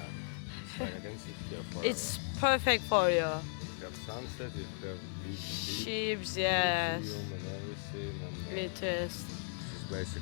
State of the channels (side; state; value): right; silent; digital silence